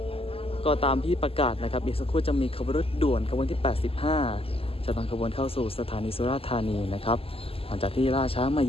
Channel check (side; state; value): right; late; 0.28 ms